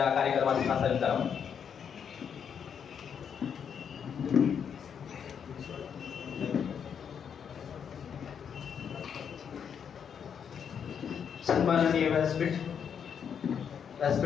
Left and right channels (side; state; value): right; quieter; 7.5 dB